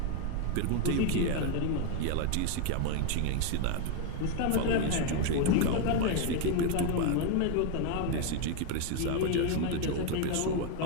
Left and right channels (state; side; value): different; both; correlation 0.01